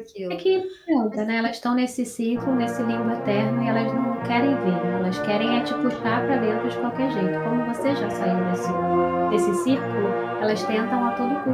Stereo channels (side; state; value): both; identical; correlation 1.00